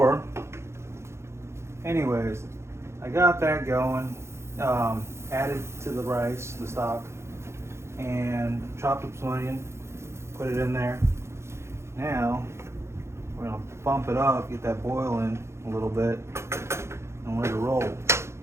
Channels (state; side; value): late; left; 0.13 ms